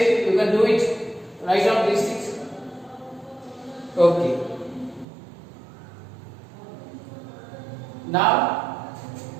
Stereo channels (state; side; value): drops out; left; at 5.1 s